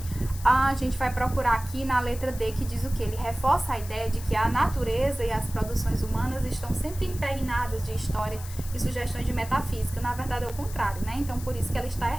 A gente vai procurar aqui na letra D, que diz o que? Ele reforça a ideia de que a natureza e as produções humanas estão sempre impregnadas de história e sugestões de metafísica. Na verdade é o contrário, né? Então por isso que ela está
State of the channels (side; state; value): left; noise; hiss, 15 dB below the sound